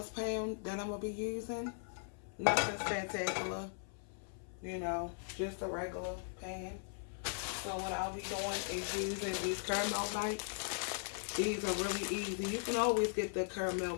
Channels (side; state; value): right; silent; 52 dB below the other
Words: that I'm going to be using. Nothing spectacular. You know, just a regular pan. So what I'll be doing is using these caramel bites. These are really easy. You can always get the caramel